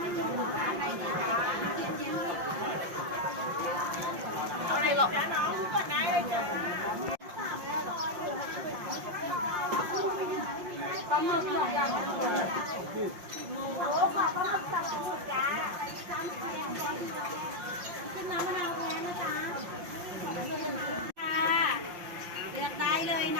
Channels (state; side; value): late; left; 5.7 ms